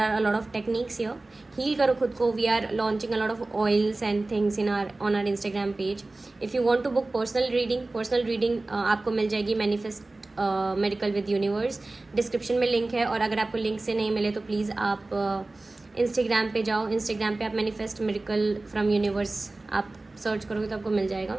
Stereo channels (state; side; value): quieter; left; 3.1 dB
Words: a lot of techniques here. Heal करो खुद को. We are launching a lot of oils and things on our Instagram page. If you want to book personal reading आपको मिल जाएगी Manifest Miracle with Universe. Description में लिंक है, और अगर आपको लिंक से नहीं मिले तो प्लीज़ आप इंस्टाग्राम पे जाओ. इंस्टाग्राम पे आप Manifest Miracle from Universe आप सर्च करोगे तो आपको मिल जाएगा.